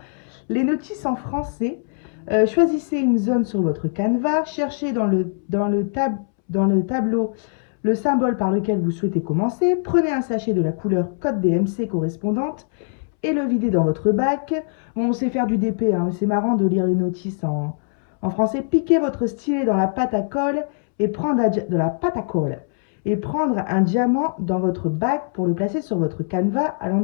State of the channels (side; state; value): right; silent; 64 dB below the other